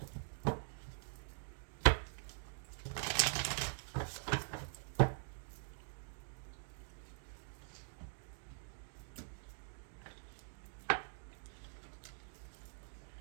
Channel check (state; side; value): silent; left; digital silence